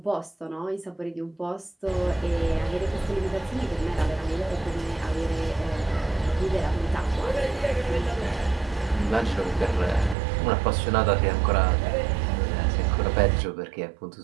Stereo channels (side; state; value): left; drops out; at 10.2 s